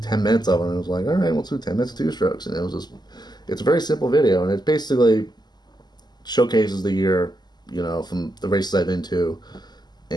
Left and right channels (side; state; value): right; late; 0.20 ms